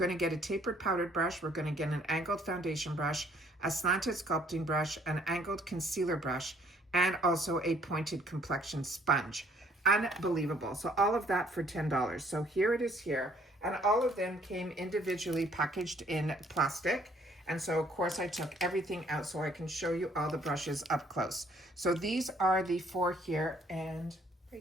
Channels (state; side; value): normal; both; correlation 0.62